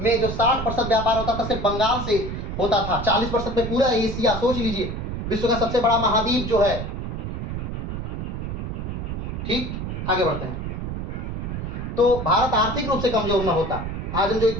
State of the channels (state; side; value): noise; right; rumble, 4 dB below the sound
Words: जो 60% व्यापार होता था सिर्फ बंगाल से होता था। 40% में पूरा एशिया, सोच लीजिए, विश्व का सबसे बड़ा महाद्वीप जो है। ठीक, आगे बढ़ते हैं। तो भारत आर्थिक रूप से कमजोर न होता, आज हम जो